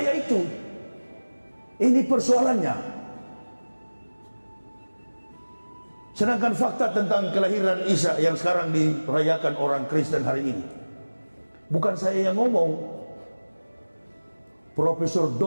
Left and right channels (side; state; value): both; inverted; correlation -1.00